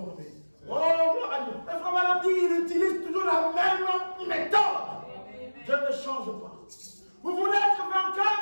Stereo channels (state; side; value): inverted; both; correlation -1.00